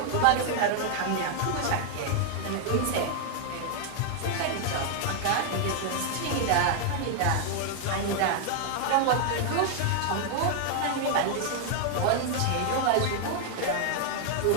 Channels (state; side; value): different; both; correlation 0.00